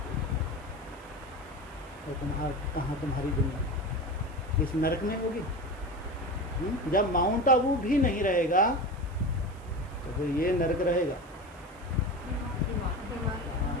और कहाँ तुम्हारी दुनिया? इस नर्क में होगी। जब माउंट आबू भी नहीं रहेगा तो फिर ये नर्क रहेगा।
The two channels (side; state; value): right; noise; hiss, 28 dB below the sound